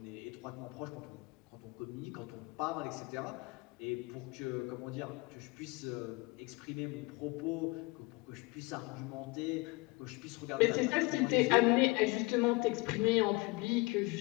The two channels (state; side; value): quieter; right; 24.5 dB